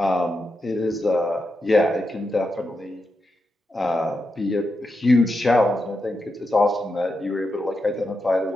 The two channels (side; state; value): both; normal; correlation 0.87